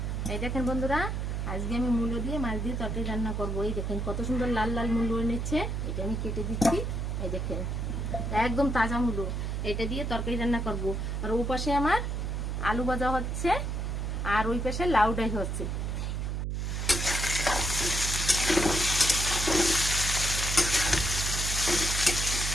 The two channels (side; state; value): right; noise; hum, 2 dB below the sound